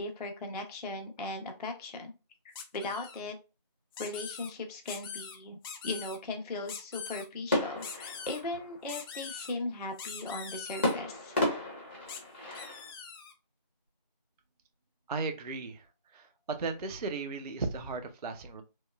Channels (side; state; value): both; inverted; correlation -0.33